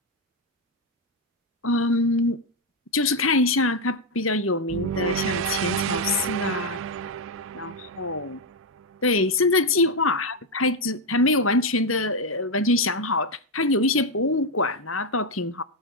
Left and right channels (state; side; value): normal; both; correlation 0.05